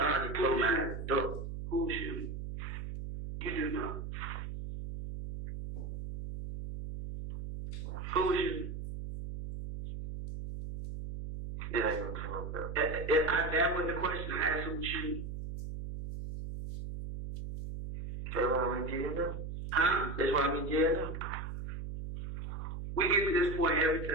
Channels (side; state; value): right; noise; hum, 6 dB below the sound